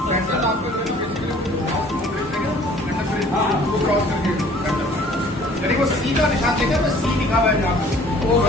वो सी का निशान देखा, बस सी लिखा हुआ है जहाँ पे वो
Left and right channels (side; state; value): both; normal; correlation 0.53